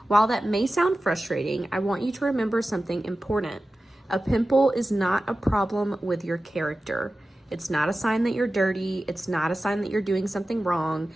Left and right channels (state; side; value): normal; both; correlation 0.94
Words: While that may sound frustrating, I want you to remember something important. A pimple is not a problem with your character. It's not a sign that you're dirty. It's not a sign that you're doing something wrong.